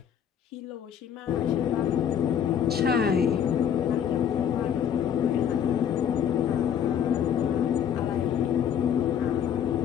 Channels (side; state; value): right; quieter; 8.8 dB